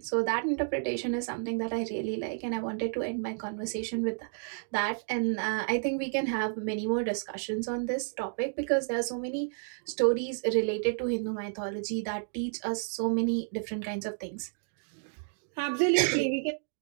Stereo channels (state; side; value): silent; left; digital silence